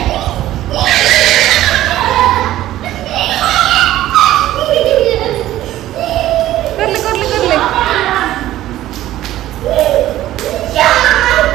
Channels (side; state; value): left; quieter; 14.2 dB